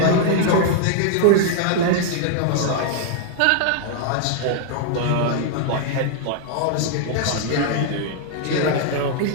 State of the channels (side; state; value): both; different; correlation 0.00